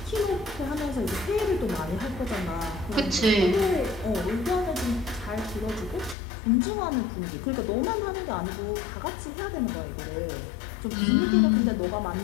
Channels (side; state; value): right; drops out; at 6.2 s